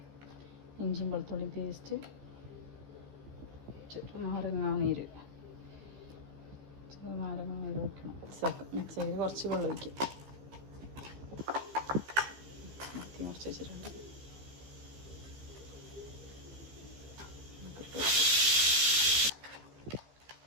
ഇഞ്ചിയും വെളുത്തുള്ളിയും പേസ്റ്റ്, നാരങ്ങാനീര് വയ്ക്കണം. മിക്സ് ചെയ്ത് കുറച്ച് വെള്ളം ഒഴിക്കും. കുറച്ച് വെച്ചിട്ടുണ്ട്.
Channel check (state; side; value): late; left; 15 ms